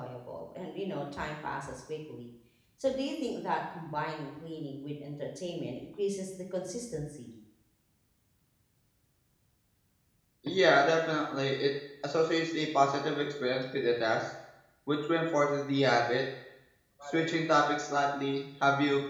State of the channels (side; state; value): both; identical; correlation 1.00